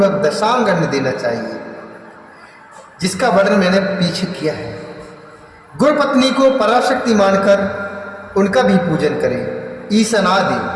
दशांग अन्न देना चाहिए, जिसका वर्णन मैंने पीछे किया है। गुरु पत्नी को पराशक्ति मानकर उनका भी पूजन करें।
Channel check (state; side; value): identical; both; correlation 1.00